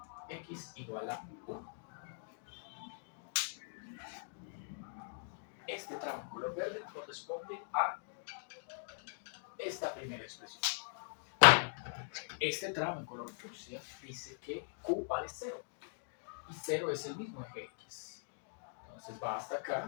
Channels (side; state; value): right; silent; digital silence